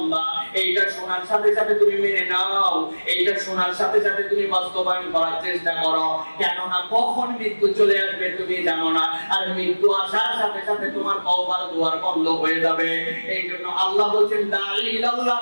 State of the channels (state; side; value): inverted; both; correlation -1.00